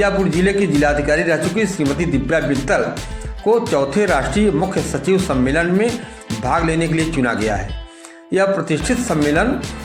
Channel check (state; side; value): identical; both; correlation 1.00